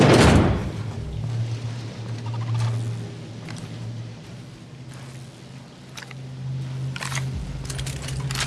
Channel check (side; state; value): both; identical; correlation 1.00